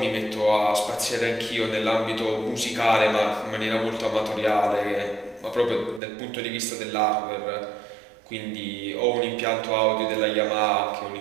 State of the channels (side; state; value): left; drops out; at 6.0 s